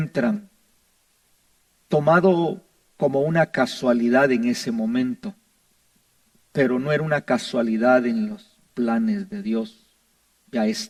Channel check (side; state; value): both; identical; correlation 1.00